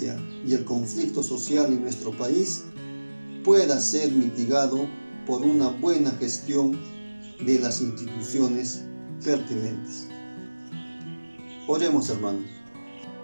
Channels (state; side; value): inverted; both; correlation -1.00